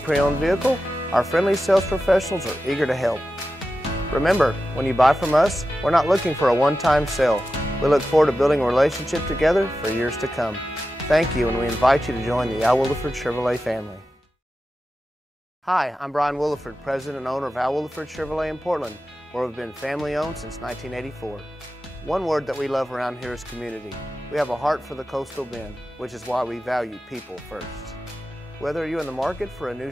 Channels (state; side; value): normal; both; correlation 0.92